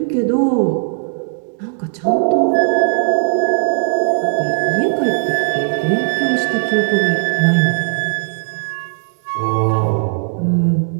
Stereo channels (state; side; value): silent; left; digital silence